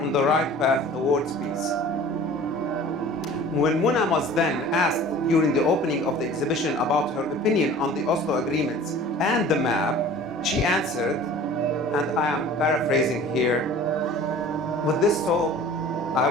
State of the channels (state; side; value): normal; both; correlation 0.44